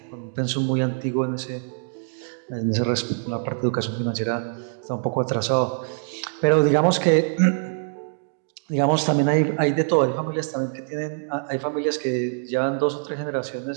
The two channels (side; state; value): left; silent; digital silence